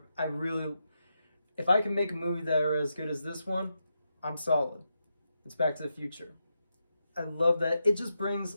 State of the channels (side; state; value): both; inverted; correlation -0.85